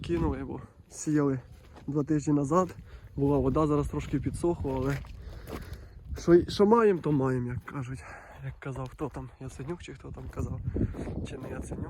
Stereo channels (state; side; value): identical; both; correlation 1.00